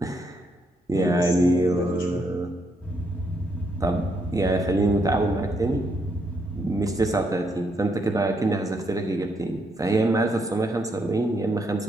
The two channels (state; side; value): normal; both; correlation 0.76